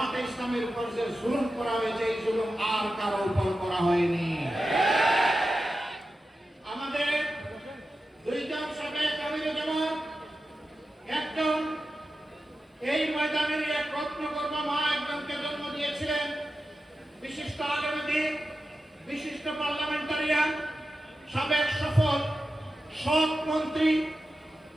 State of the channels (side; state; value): both; normal; correlation 0.92